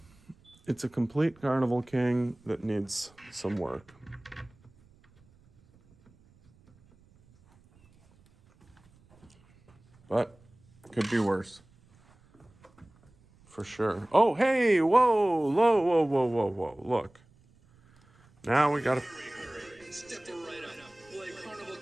it's a complete Carnival King that needs some work. But could be worse. For sure. Oh, hey, whoa, whoa. Look. Now we gotta. Step right up. Play Carnival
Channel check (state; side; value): noise; right; rumble, 30 dB below the sound